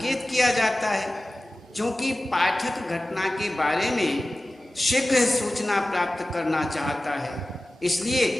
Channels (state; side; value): normal; both; correlation 0.96